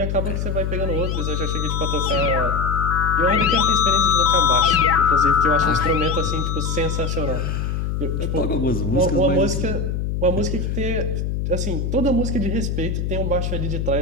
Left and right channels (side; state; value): left; noise; hum, 2 dB below the sound